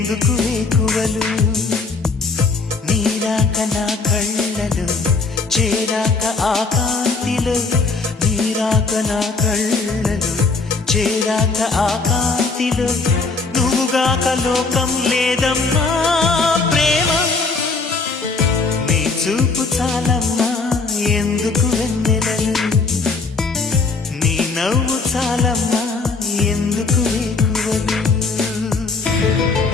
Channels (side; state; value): right; quieter; 4.1 dB